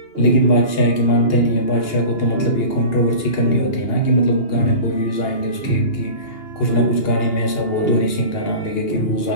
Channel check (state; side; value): late; right; 2.8 ms